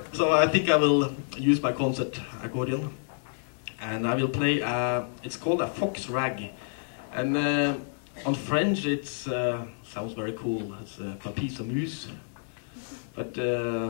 So I think I will use my concert accordion. And I will play, it's called a fox rag. And on French it sounds very cool, it's papis à mousse. But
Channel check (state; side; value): silent; right; digital silence